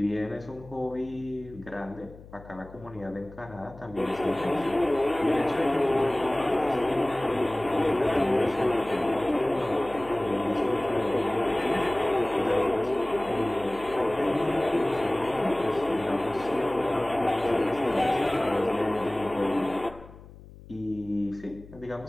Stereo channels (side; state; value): left; noise; hum, 19 dB below the sound